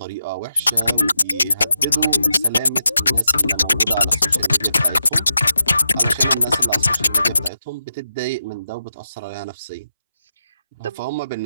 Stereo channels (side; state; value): both; inverted; correlation -0.87